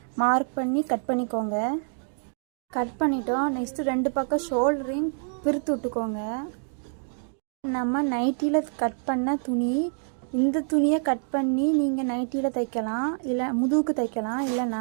மார்க் பண்ணி கட் பண்ணிக்கோங்க. கட் பண்ணிட்டோம். நெக்ஸ்ட்டு 2 பக்கம் ஷோல்டரையும் பிரித்து விட்டுக்கோங்க. நம்ம நைட்டியில் கட் பண்ண துணி, இந்த துணியை கட் பண்ணி நீங்கள் நைட்டியில் தைக்கலாம், இல்லை முதுகுக்கு தைக்கலாம்.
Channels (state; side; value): silent; left; 60 dB below the other